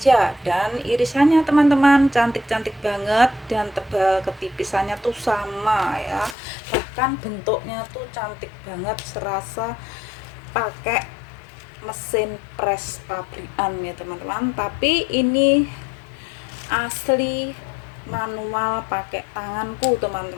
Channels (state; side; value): drops out; right; at 6.4 s